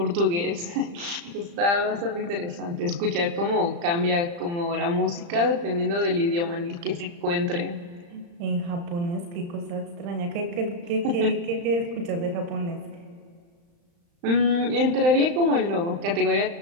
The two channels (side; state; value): left; late; 35 ms